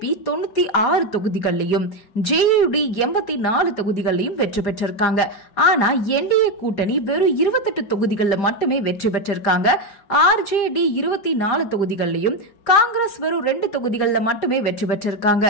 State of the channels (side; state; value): right; late; 5.0 ms